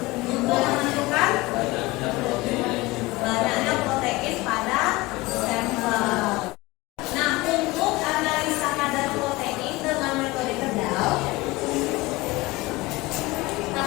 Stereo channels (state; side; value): quieter; right; 21.0 dB